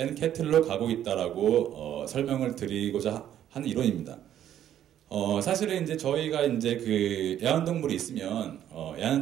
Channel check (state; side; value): quieter; left; 10.9 dB